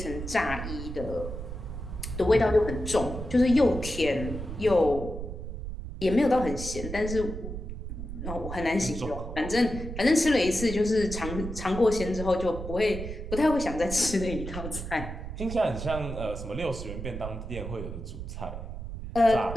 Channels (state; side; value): noise; right; rumble, 8 dB below the sound